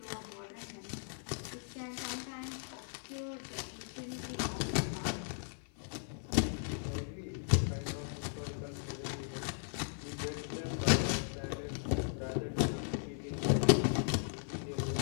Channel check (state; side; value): silent; right; 53 dB below the other